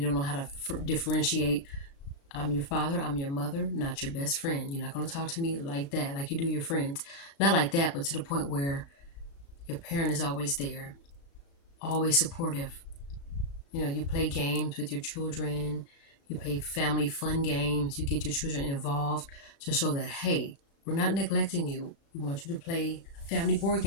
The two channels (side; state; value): right; late; 36 ms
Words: know how to differentiate. I'm your father, I'm your mother, not your best friend. You're not going to talk to me like that, like you do your friends. Not like that, but to the point where your parent is always there, always supportive. You know, you play games with your children, you play family fun games, you get your children involved to show that, hey, We're not neglecting you. We want you to play a family board